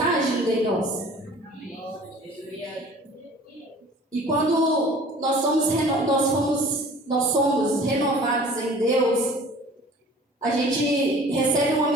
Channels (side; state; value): both; normal; correlation 0.47